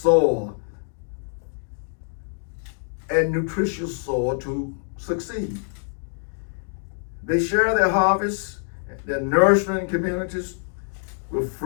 and nutritious soil to succeed. They share their harvests, their nurturing communities with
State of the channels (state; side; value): silent; right; digital silence